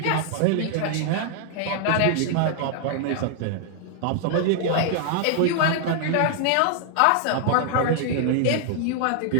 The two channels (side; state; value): both; different; correlation 0.00